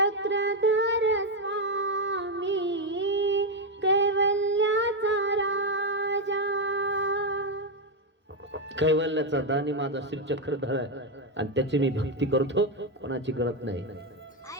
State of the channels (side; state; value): both; normal; correlation 0.05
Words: स्वामी कैवल्याचा राजा. कैवल्याचा दानी माझा श्री चक्रधर आहे आणि त्याची मी भक्ती करतो, कोणाची करत नाही.